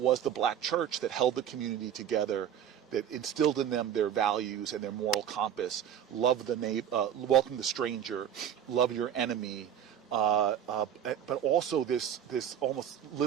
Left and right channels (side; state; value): left; quieter; 9.5 dB